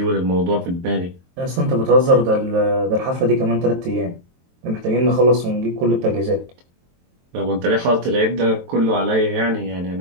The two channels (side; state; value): left; late; 23 ms